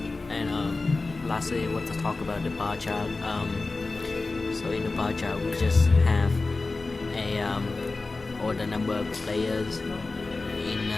And lastly, I want to talk about the bar chart. So in the bar chart, we just have all the number of players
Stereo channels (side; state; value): right; quieter; 3.6 dB